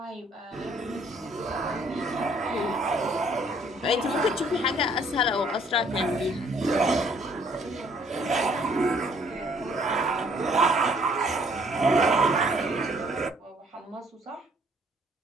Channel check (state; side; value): normal; both; correlation 0.62